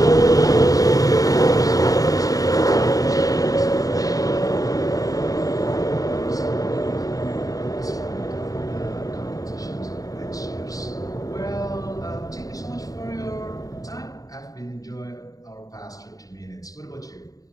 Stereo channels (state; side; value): late; right; 0.17 ms